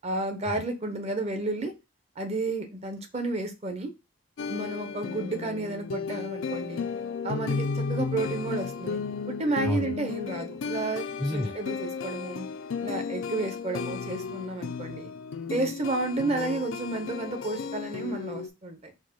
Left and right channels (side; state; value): both; normal; correlation 0.36